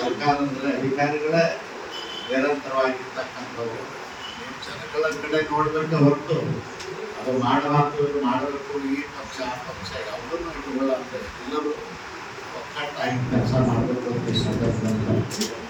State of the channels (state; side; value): identical; both; correlation 1.00